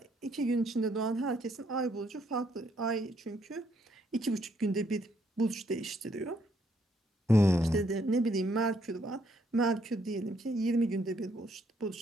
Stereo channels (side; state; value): both; normal; correlation 0.71